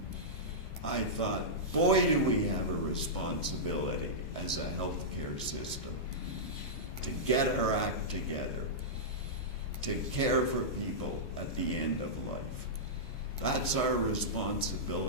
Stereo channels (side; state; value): right; late; 14 ms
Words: I thought, boy, do we have a responsibility as a healthcare system to get our act together, to care for people at the end of life. That's our